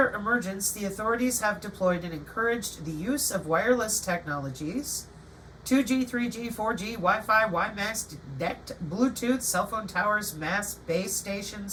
emergence, the authorities have deployed and encouraged the use of wireless technologies, 2G, 3G, 4G, Wi-Fi, WiMAX, DECT, Bluetooth, cell phone towers, mass base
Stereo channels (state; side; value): identical; both; correlation 1.00